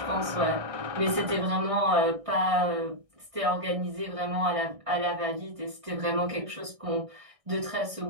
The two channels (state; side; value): late; left; 1.6 ms